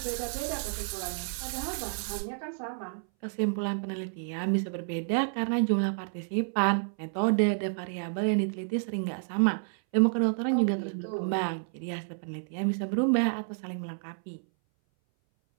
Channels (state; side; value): silent; left; 58 dB below the other